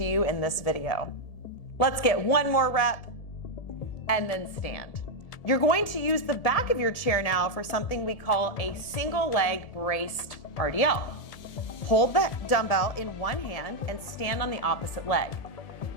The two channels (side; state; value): right; late; 1.7 ms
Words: you in this video. Let's get one more rep and then stand. You're going to use the back of your chair now for something we call a single leg braced RDL. Hold the dumbbell in one hand and stand on the opposite leg.